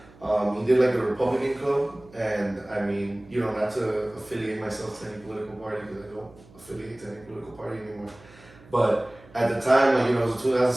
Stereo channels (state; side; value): noise; right; hum, 24 dB below the sound